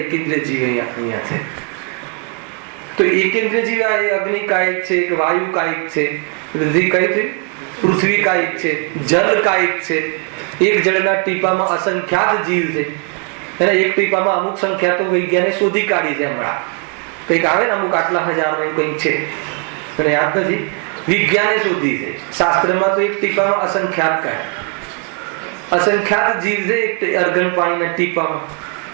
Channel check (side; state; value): left; quieter; 35.2 dB